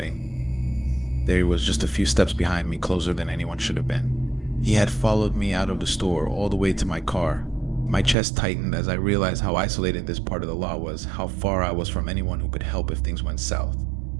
There he was, just a few steps behind me, closer than anyone should have been. He had followed me out of the store, all the way to my car. My chest tightened as I realized how isolated this part of the lot was, how far I was from anyone who could help if things went south.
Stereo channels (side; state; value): left; drops out; at 8.2 s